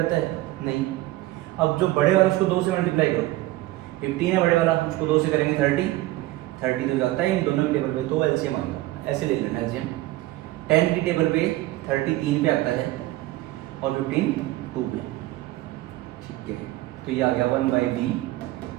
है नहीं। अब जो बड़े वाला उसको 2 से मल्टीप्लाई करो, 15 है बड़े वाला, उसको 2 से करेंगे 30 तो जाता है इन दोनों की टेबल पे, तो एलसीएम आएगा। ऐसे ले लेना एलसीएम। 10 की टेबल पे 30 3 पे आता है और 15 2 पे, ठीक है। तो ये आ गया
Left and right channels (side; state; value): left; quieter; 17.5 dB